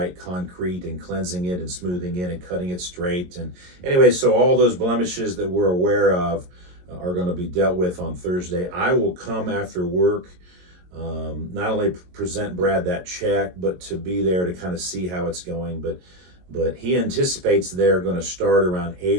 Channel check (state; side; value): late; left; 22 ms